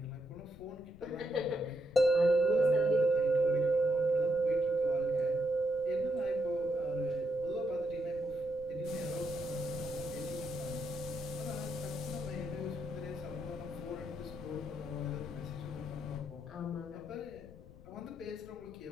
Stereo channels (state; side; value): noise; left; rumble, 19 dB below the sound